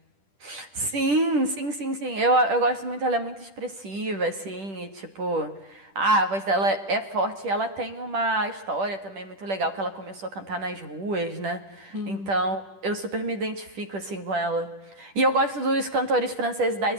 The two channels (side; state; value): left; late; 10 ms